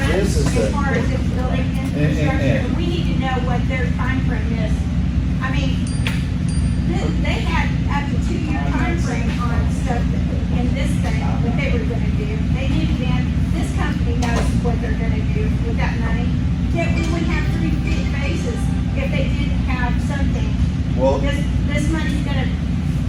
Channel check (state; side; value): identical; both; correlation 1.00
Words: This is as the- far as its building infrastructure. We need to know what their timeframe is. I mean, they had up to 2-year timeframe on stuff in this thing, what they were gonna do. They knew then, this company knows what they're gonna do with that money. Yet we would have 3 big bases if they didn't have something. Well, This money's gonna